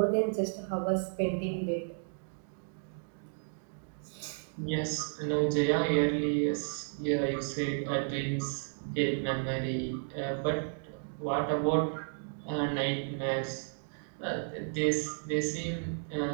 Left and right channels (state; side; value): silent; left; digital silence